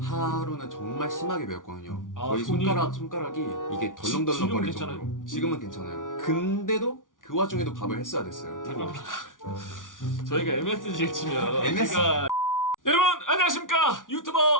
하루는 정말 심하게 매웠거든요. 아, 거의 손이? 손가락이 이게 덜렁덜렁 지금은 거릴 괜찮아요? 정도로. 지금은 괜찮아요. 근데도 그 와중에도 밥을 했어야 됐어요. 잠깐만. 저희가 MSG를 치면 MS? 제가 여러분 안녕하십니까,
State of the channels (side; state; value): right; late; 0.88 ms